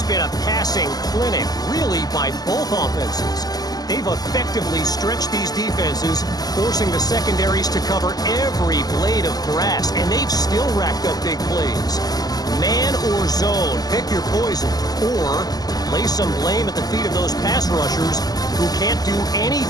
been a passing clinic, really, by both offenses. They've effectively stretched these defenses, forcing the secondaries to cover every blade of grass, and they've still racked up big plays. Man or zone, pick your poison, or lay some blame at the feet of those pass rushers who can't do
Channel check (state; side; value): late; right; 0.19 ms